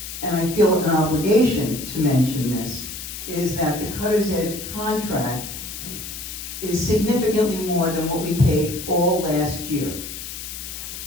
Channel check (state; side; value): noise; left; hiss, 9 dB below the sound